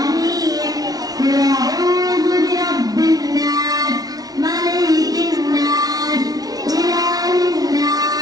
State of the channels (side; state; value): left; late; 0.18 ms